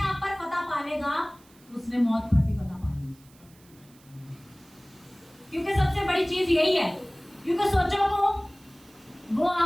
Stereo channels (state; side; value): noise; right; hiss, 28 dB below the sound